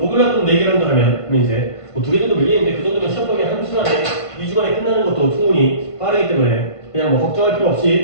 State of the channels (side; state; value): right; late; 1.5 ms